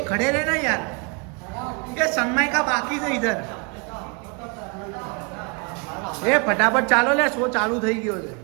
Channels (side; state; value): left; quieter; 32.8 dB